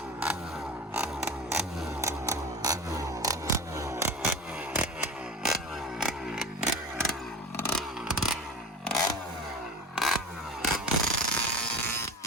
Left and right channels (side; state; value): both; normal; correlation 0.33